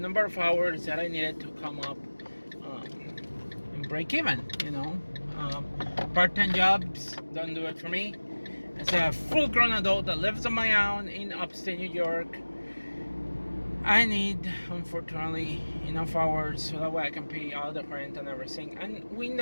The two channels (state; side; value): inverted; both; correlation -1.00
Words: of hours that I needed to come up and break even. Part-time jobs don't do it for me. As a full-grown adult that lives on my own in upstate New York, I need, unfortunately, enough hours so that way I can pay all the rent and everything. And we